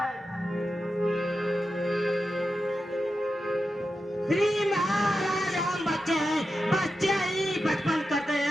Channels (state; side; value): normal; both; correlation 0.90